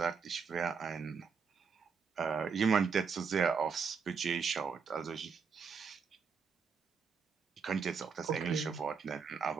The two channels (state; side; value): quieter; left; 5.8 dB